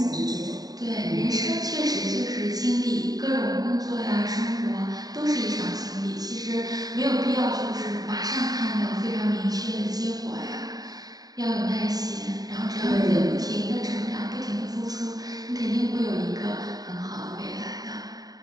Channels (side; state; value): left; late; 0.18 ms